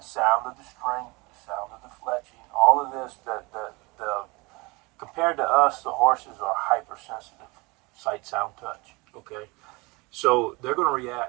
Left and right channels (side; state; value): left; quieter; 25.6 dB